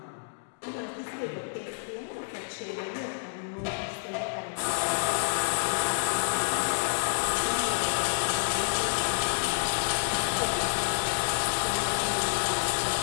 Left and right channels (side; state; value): right; silent; digital silence